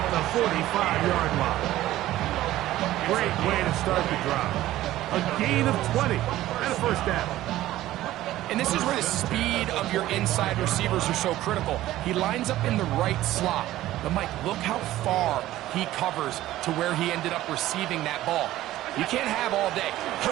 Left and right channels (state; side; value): quieter; left; 14.9 dB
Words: at the 45-yard line. Great way to start the drive. A gain of 20 and a first down. And this is where the speed of your inside receivers are so critical. He lines up in the right slot. But, Mike, look how far he covers to where he ended up receiving that ball. You can't have all day.